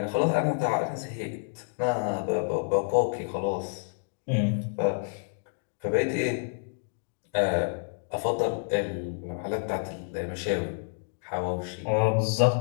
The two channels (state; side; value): silent; right; digital silence